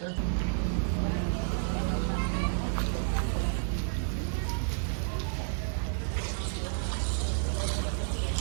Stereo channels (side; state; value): left; silent; digital silence